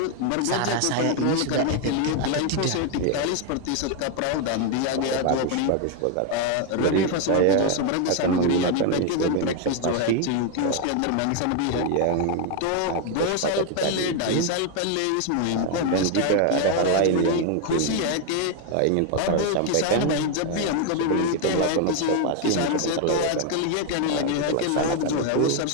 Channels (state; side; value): different; both; correlation 0.01